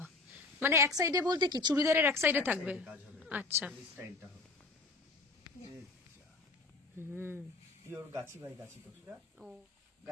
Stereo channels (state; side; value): quieter; right; 3.6 dB